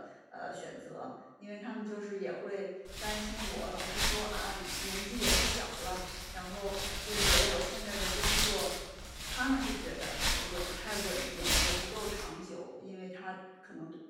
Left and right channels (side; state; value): both; identical; correlation 1.00